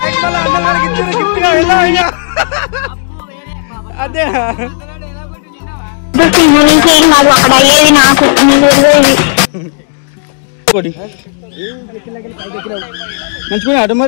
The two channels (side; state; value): right; silent; digital silence